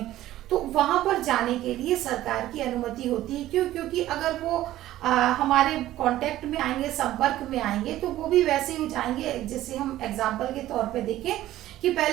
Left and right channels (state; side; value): quieter; left; 14.4 dB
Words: तो वहां पर जाने के लिए सरकार की अनुमति होती है। क्यों? क्योंकि अगर वो हमारे कांटेक्ट में आएंगे, संपर्क में आएंगे, तो वो भी वैसे ही जाएंगे। जैसे हम एग्जांपल के तौर पे देखें कि